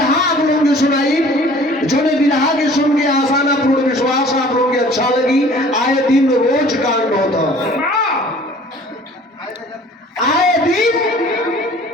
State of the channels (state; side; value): normal; both; correlation 0.50